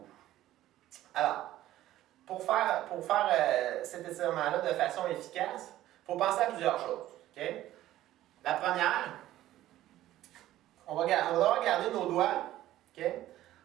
Alors, pour faire cet étirement-là de façon efficace, il faut penser à plusieurs choses. Okay? La première, on va devoir garder nos doigts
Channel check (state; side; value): quieter; left; 14.2 dB